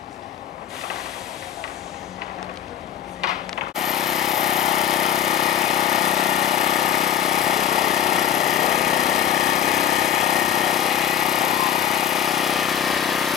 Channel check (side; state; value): right; quieter; 10.1 dB